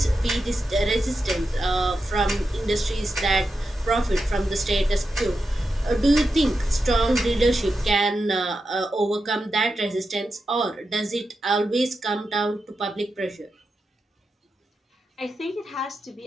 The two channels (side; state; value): both; normal; correlation 0.89